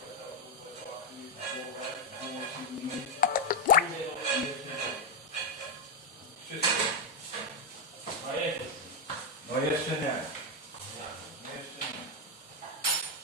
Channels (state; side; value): normal; both; correlation 0.03